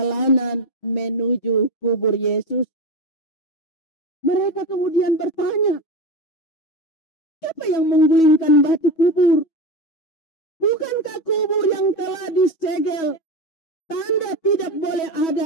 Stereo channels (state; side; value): late; right; 6.2 ms